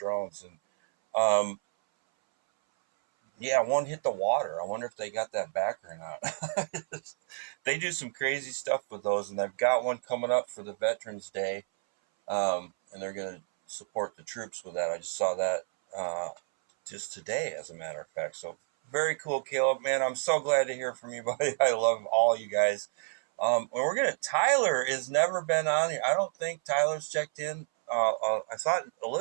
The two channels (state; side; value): silent; left; 58 dB below the other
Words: And yeah, one hit the water. I wonder if they got that back or not. They do some crazy stuff with those, and they've got one coming up for the Veterans Day, and they're going to support the troops with that. I just saw that just today, as a matter of fact. So very cool, Caleb, man. I'm so glad to hear from you, buddy. I love all you guys. Tyler has never been on here. I don't think Tyler's checked in. I thought